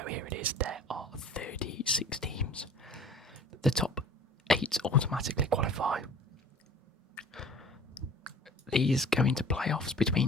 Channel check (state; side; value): normal; both; correlation 0.46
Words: here it is. There are 36 teams. The top 8 automatically qualify. These go into playoffs